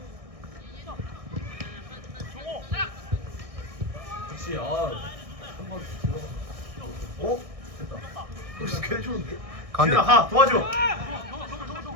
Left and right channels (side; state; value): left; late; 1.6 ms